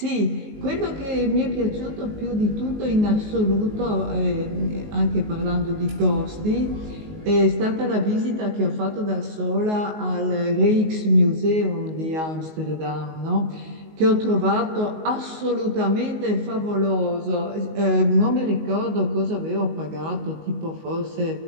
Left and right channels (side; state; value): left; late; 19 ms